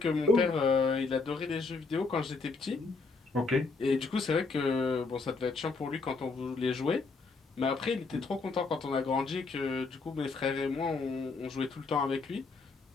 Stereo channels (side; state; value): right; quieter; 4.1 dB